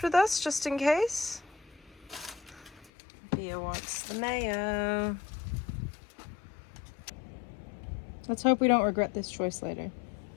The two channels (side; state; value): right; drops out; at 2.9 s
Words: with us just in case. Pia wants the mayo. Let's hope we don't regret this choice later.